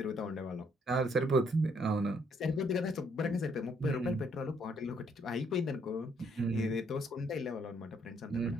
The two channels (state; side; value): normal; both; correlation 0.69